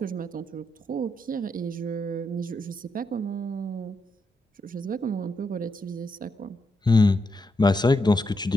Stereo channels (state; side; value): normal; both; correlation 0.82